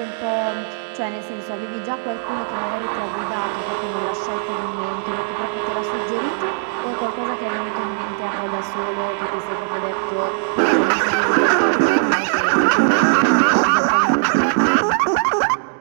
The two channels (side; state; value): left; silent; digital silence